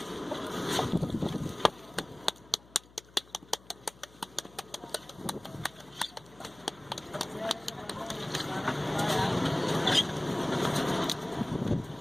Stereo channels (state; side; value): noise; left; hum, 24 dB below the sound